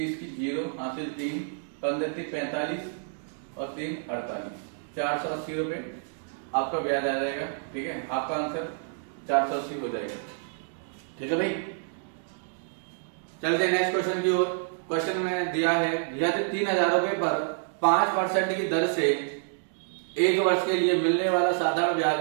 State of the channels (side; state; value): left; silent; digital silence